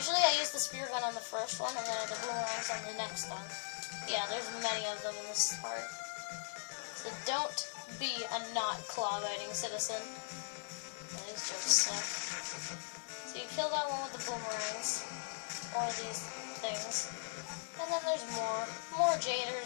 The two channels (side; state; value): right; silent; digital silence